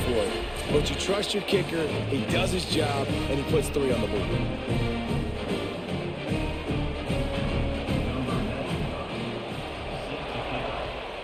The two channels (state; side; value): identical; both; correlation 1.00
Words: for it. But you trust your kicker, he does his job, and he puts 3 on the board.